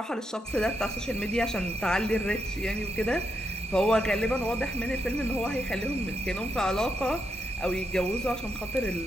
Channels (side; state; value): both; normal; correlation 0.82